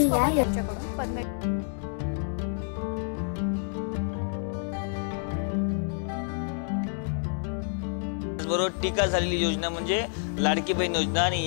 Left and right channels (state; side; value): silent; right; digital silence